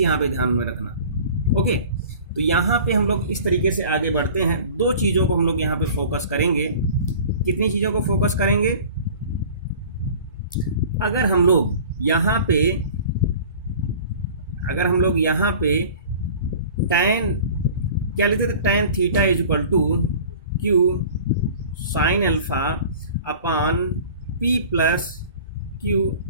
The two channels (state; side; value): inverted; both; correlation -0.43